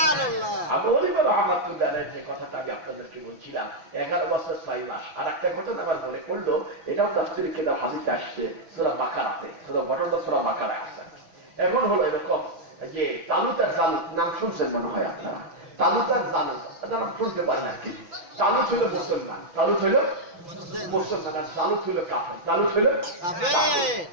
আবু হানিফা রাহমাতুল্লাহ আলাইহি যে কথাটা আমি আপনাদেরকে বলছিলাম, 11 বছর 6 মাস। আর একটা ঘটনা আমার মনে পড়লো, এটাও তাফসীরে কিতাব হাদিসে আসছে, সূরা বাকারাতে, ঘটনাটা সূরা বাকারায় আছে। এখন হলো এরকম যে তালুত আর জালুত নাম শুনছেন মনে হয় আপনারা। তালুত আর জালুত নাম শুনতে পারেন না কি? তালুত হইল মুসলমান, তালুত হইল মুসলমান, আর জালুত হইল কাফের। তালুত হইল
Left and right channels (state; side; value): late; left; 6.1 ms